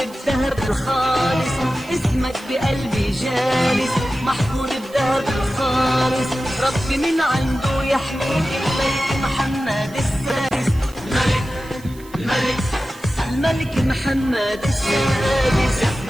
الخالص، اسمك بقلبي جالس محفور بذهب الخالص. ربي من عنده يحميك الملك محمد السادس، الملك الملك محمد السادس.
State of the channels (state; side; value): noise; right; hiss, 22 dB below the sound